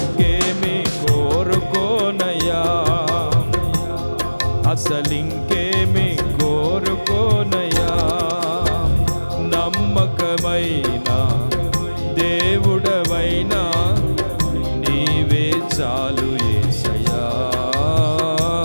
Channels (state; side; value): inverted; both; correlation -1.00